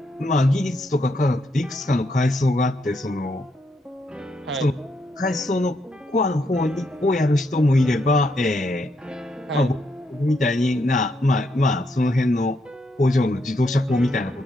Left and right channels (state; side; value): normal; both; correlation 0.78